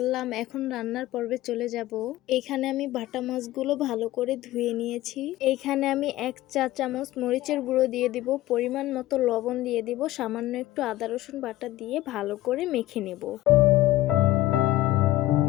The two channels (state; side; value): quieter; right; 16.0 dB